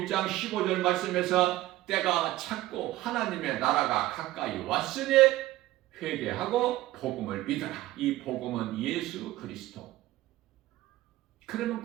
1장 15절 말씀에서 때가 찼고 하나님의 나라가 가까이 왔으니 회개하고 복음을 믿어라. 이 복음은 예수 그리스도. 그러면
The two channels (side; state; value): left; quieter; 16.4 dB